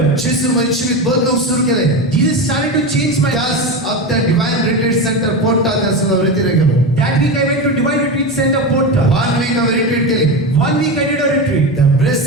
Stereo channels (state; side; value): normal; both; correlation 0.20